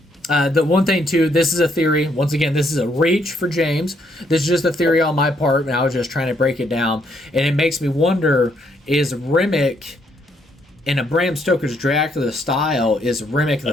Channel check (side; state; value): both; normal; correlation 0.72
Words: one thing too, this is a theory. Once again, this is a reach for James. This is just a theory on my part, and I was just trying to break it down. And it makes me wonder: is Remick, in a Bram Stoker's Dracula style, is Remick